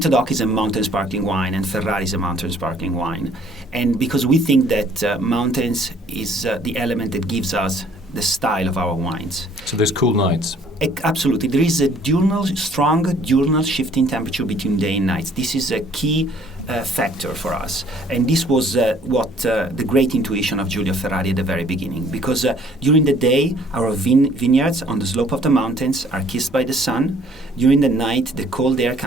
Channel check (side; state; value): both; normal; correlation 0.59